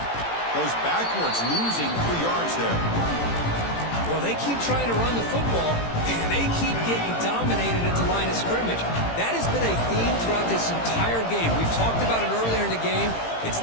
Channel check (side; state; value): right; late; 18 ms